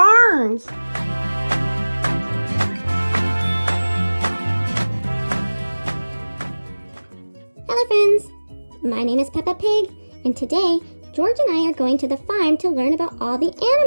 Hello friends, my name is Peppa Pig, and today George and I are going to the farm to learn about all the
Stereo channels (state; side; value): inverted; both; correlation -1.00